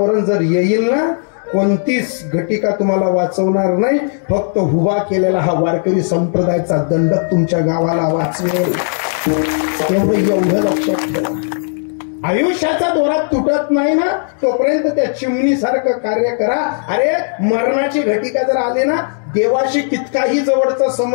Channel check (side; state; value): right; silent; digital silence